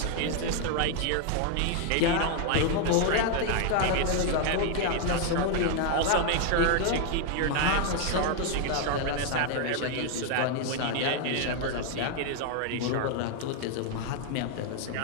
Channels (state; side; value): different; both; correlation 0.00